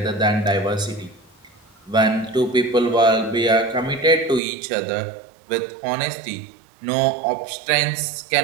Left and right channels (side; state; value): left; drops out; at 4.4 s